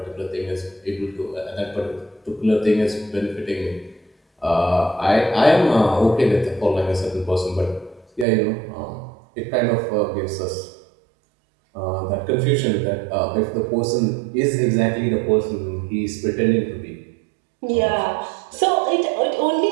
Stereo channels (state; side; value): drops out; left; at 8.2 s